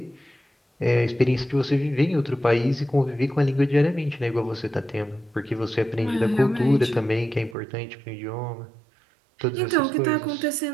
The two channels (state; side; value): drops out; left; at 7.6 s